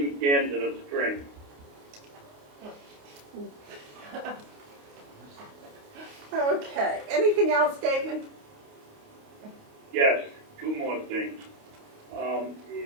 cans and a string. Okay. Anything else, David? Yes, 2 more things.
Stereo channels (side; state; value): left; late; 28 ms